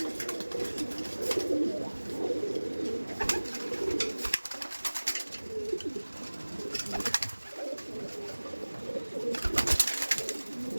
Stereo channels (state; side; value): inverted; both; correlation -1.00